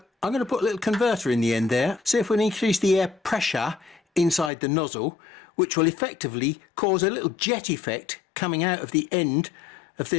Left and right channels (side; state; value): right; drops out; at 4.5 s